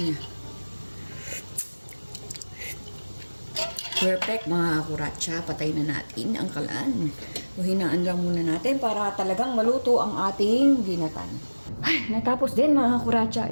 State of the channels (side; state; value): both; inverted; correlation -1.00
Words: niya. Perfect mga kuratsa. Patay na natin ang kalan. O hinaan lang muna natin para talagang maluto ang ating ginatan. Ay, natapos din mga kuratsa